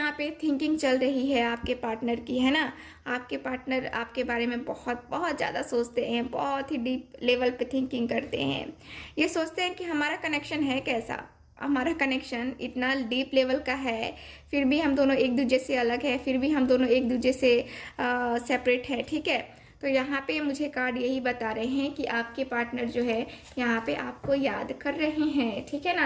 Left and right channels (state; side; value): identical; both; correlation 1.00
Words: पे थिंकिंग चल रही है आपके पार्टनर की, है ना। आपके पार्टनर आपके बारे में बहुत बहुत ज़्यादा सोचते हैं, बहुत ही डीप लेवल पे थिंकिंग करते हैं। ये सोचते हैं कि हमारा कनेक्शन है कैसा, हमारा कनेक्शन इतना डीप लेवल का है, फिर भी हम दोनों एक दूसरे से अलग है, फिर भी हम दोनों एक दूसरे से सेपरेट है। ठीक है, तो यहाँ पे मुझे कार्ड यही बता रहे हैं कि आपके पार्टनर जो है यहाँ पे आपको याद कर रहे हैं। ठीक है